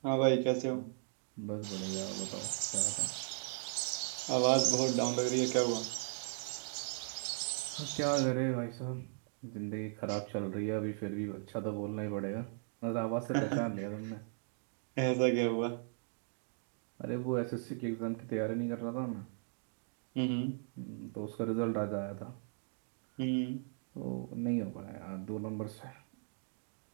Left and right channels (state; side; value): silent; left; digital silence